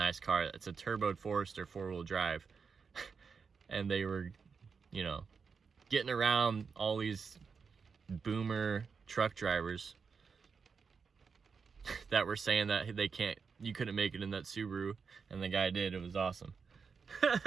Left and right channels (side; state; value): left; quieter; 5.6 dB